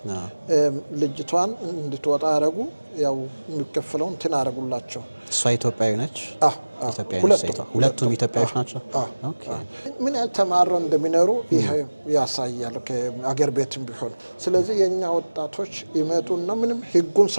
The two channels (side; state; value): both; inverted; correlation -1.00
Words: ልጅቷን እንድትወጣ ያደረጉ ያው የሚከፈለው እንትን አደረጉላቸው። እሷ ኢትዮጵያዊ ነች። ሁለቱም ኢትዮጵያዊዎች ናቸው። ምን ያህል ተማረው እንደሚኖሩ ይሄ ያሳያል ከአገር ቤትም ቢሆን። ስለዚህ የኛ ወጣቶች ይመጡና ምንም ህጉን